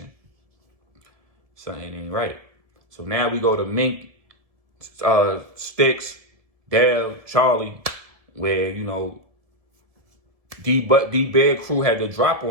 Something ain't right. So now we go to Mink, Sticks, Dale, Charlie, where, you know, D-Bear crew had to drop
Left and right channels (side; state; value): left; late; 1.7 ms